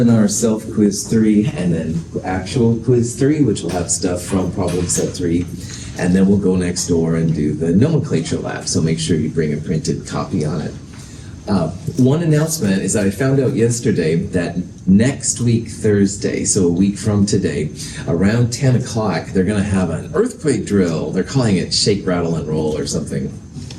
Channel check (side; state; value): both; identical; correlation 1.00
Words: self-quiz 3 and then actual quiz 3, which will have stuff from problem set 3. And then we'll go next door and do the nomenclature lab, so make sure you bring a printed copy on it. One announcement is that I found out yesterday that next week, Thursday, so a week from today, around 10 o'clock, they're going to have an earthquake drill. They're calling it Shake, Rattle, and Roll or something